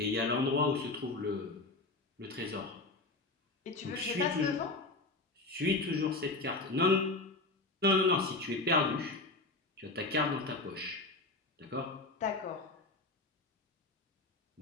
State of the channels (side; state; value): right; quieter; 3.1 dB